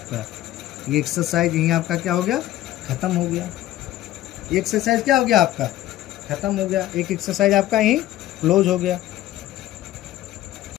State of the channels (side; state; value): right; quieter; 14.3 dB